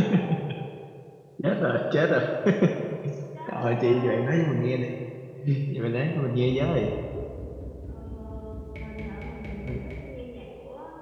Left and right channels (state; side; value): identical; both; correlation 1.00